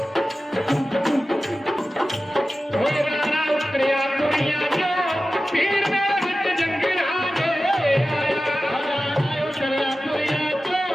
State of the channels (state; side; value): normal; both; correlation 0.95